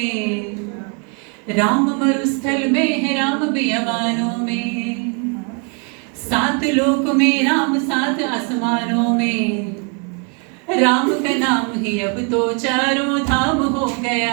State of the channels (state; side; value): quieter; left; 36.9 dB